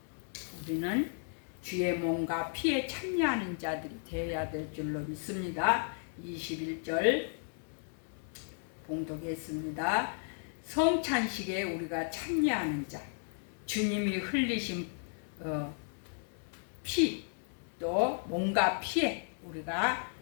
우리는 주의 몸과 피에 참여하는 자들이 되어야 될 줄로 믿습니다. 21절 봉독했습니다. 성찬식에 우리가 참여하는 자, 주님이 흘리신 피, 또 몸과 피에 우리가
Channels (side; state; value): right; silent; 55 dB below the other